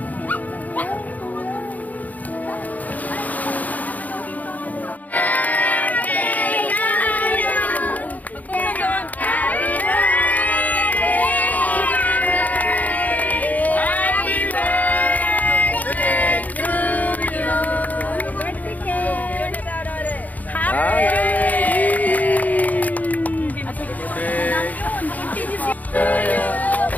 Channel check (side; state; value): right; late; 0.077 ms